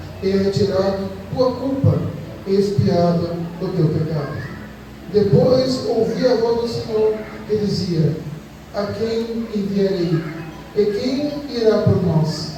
e é retirado tua culpa, e expiado o teu pecado. Depois ouvi a voz do Senhor que dizia: a quem enviarei? E quem irá por nós?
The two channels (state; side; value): identical; both; correlation 1.00